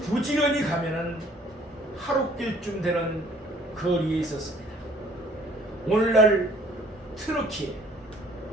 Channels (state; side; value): normal; both; correlation 0.57